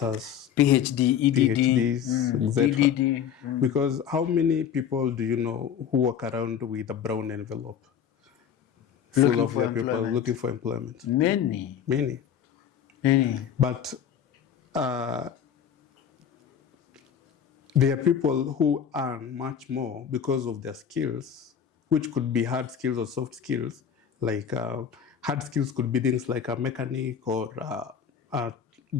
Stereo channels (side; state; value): right; quieter; 8.4 dB